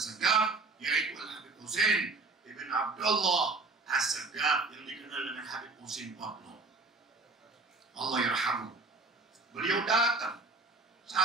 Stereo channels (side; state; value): left; quieter; 3.6 dB